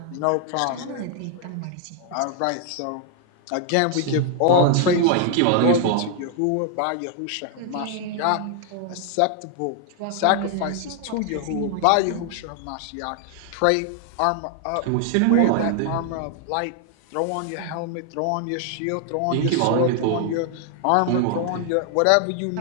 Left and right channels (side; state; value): both; different; correlation 0.00